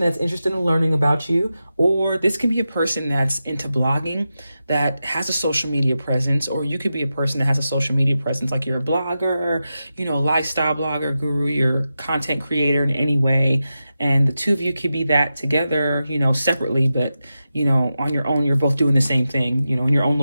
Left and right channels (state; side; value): inverted; both; correlation -0.91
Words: that's interested in learning about you, or this can be a person that's into blogging, that has a social media presence, or you could be a person that has a social media presence, like you're a blogger, lifestyle blogger, guru, you're content creator in any way, and the two of you could be that together, separately, but on your own, you're both doing the same thing, in your own